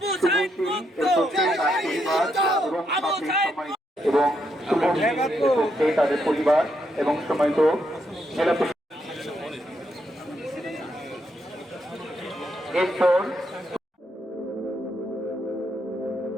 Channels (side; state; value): both; normal; correlation 0.78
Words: এবং তাদের পরিবার এবং সম্মানিত জেলা এরপর